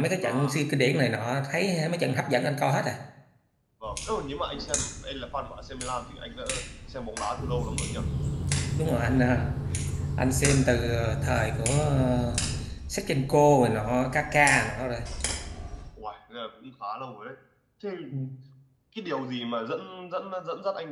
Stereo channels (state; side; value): identical; both; correlation 1.00